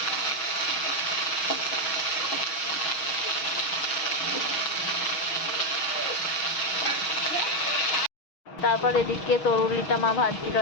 তারপর এদিকে তরুলিটা মা ভাজছিল,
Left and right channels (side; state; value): right; late; 6.3 ms